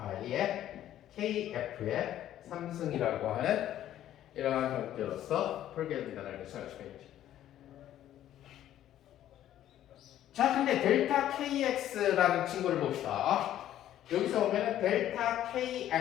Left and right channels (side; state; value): right; quieter; 12.1 dB